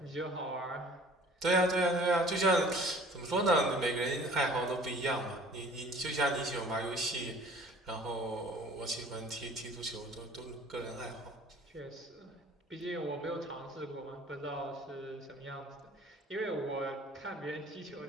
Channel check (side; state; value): both; normal; correlation 0.50